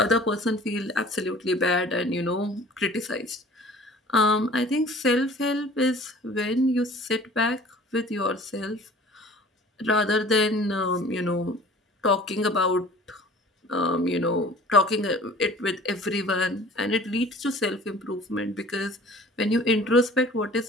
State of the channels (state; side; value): normal; both; correlation 0.47